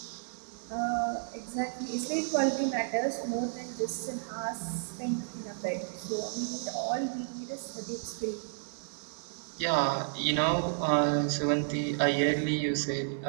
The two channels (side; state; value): left; silent; digital silence